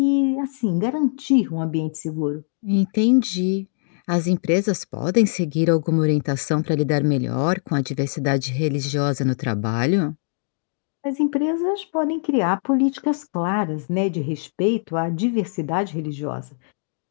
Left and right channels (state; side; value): silent; right; digital silence